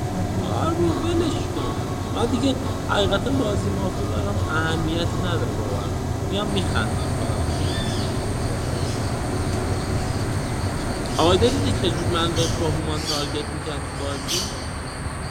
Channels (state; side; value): identical; both; correlation 1.00